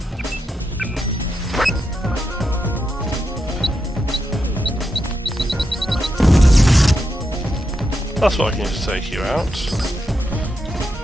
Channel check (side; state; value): both; normal; correlation 0.85